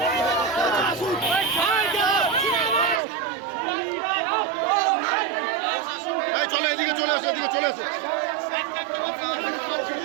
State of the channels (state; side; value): drops out; left; at 3.0 s